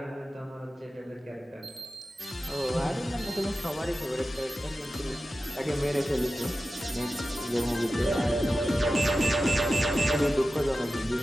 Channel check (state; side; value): normal; both; correlation 0.94